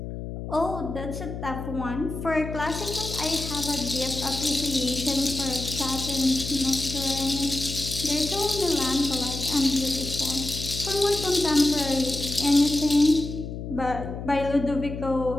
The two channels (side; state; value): left; noise; hum, 7 dB below the sound